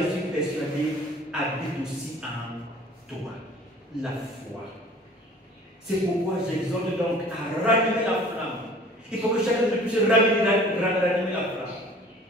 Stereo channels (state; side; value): normal; both; correlation 0.48